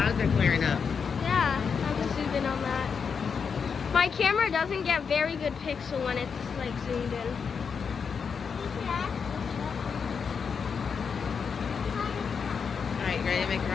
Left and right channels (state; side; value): quieter; right; 6.1 dB